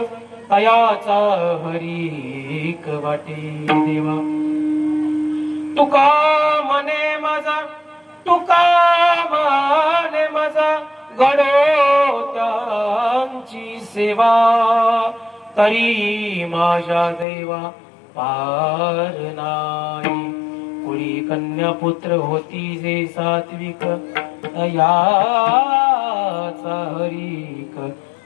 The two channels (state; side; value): drops out; right; at 17.2 s